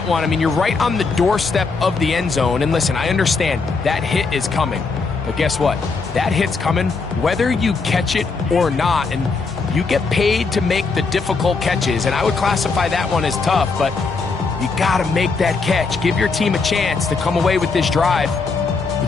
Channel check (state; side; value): quieter; right; 4.4 dB